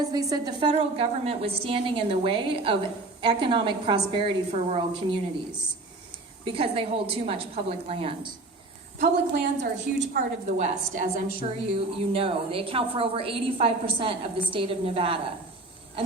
they said the federal government was standing in the way of economic prosperity for rural communities because they hold too much public land. Public lands are a huge part of the West, as I'm sure you know. They account for over 85% of the state of Nevada.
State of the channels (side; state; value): left; quieter; 3.1 dB